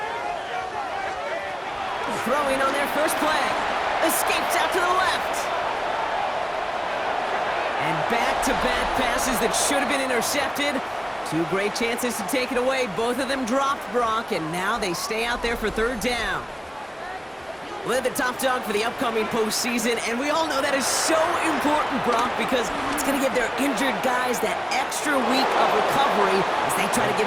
Throwing on their first play. Escapes out to the left. And back-to-back passes that should have been intercepted. Two great chances to take it away. Both of them dropped, Brock, and now they stay out there for third down. We're the top dog for the upcoming postseason, and we all know that is so important, Brock, because it's going to give their injured guys that extra week of recovery as they try to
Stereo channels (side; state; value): both; identical; correlation 1.00